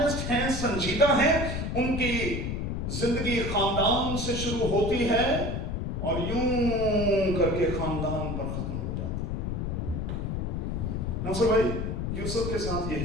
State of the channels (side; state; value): left; noise; rumble, 2 dB below the sound